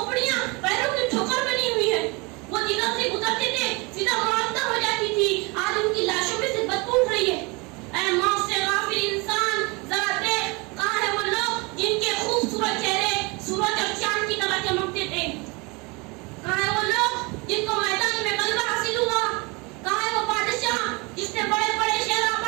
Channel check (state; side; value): quieter; left; 27.5 dB